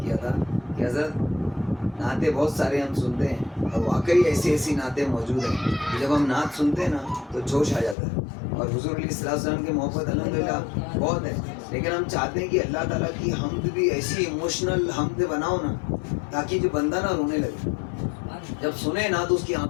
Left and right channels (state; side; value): drops out; right; at 8.0 s